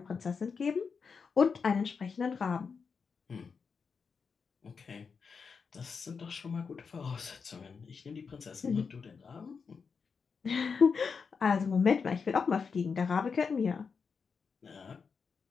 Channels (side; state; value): right; quieter; 5.6 dB